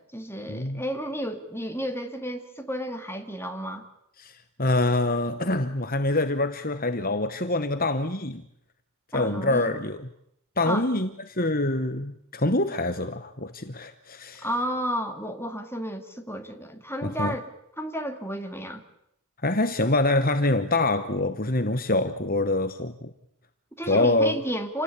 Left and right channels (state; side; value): normal; both; correlation 0.17